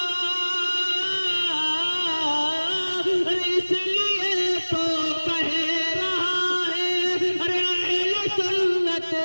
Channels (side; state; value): both; inverted; correlation -1.00